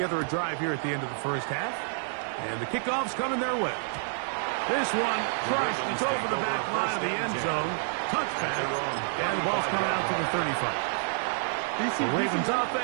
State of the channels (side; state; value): left; silent; digital silence